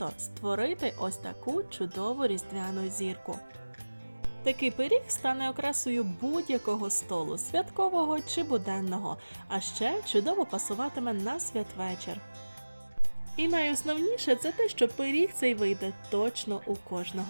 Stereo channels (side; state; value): both; inverted; correlation -1.00